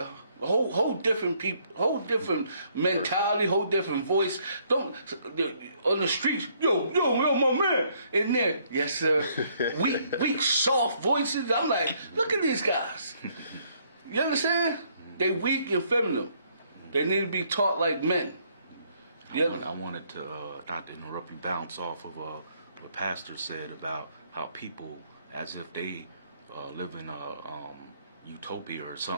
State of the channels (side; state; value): both; inverted; correlation -0.68